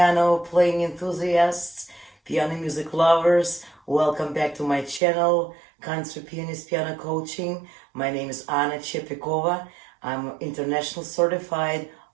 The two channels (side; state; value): left; drops out; at 5.0 s